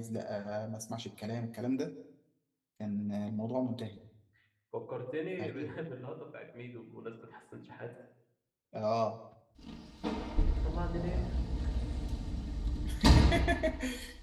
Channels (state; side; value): identical; both; correlation 1.00